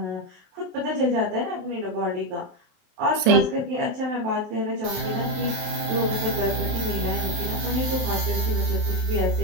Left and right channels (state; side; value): late; left; 28 ms